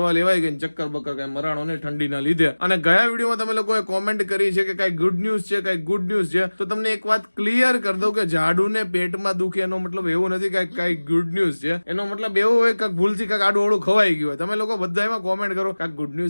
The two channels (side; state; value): both; inverted; correlation -1.00